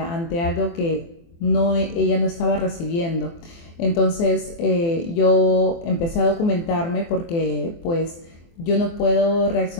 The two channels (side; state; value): right; late; 24 ms